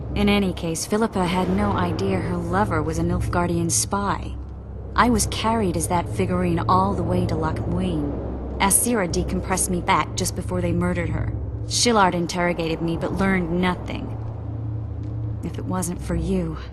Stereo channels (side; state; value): both; identical; correlation 1.00